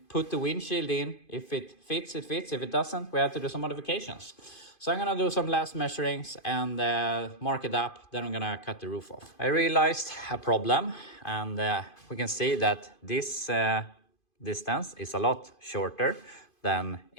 put the windshield in. If it fits, it fits. If it doesn't, we have to do some modifications. So I'm gonna do some last measurings and mark it up. Then I'm gonna cut the roof off. I realized a problem, and we can see that this distance is a lot shorter than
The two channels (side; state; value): right; late; 2.5 ms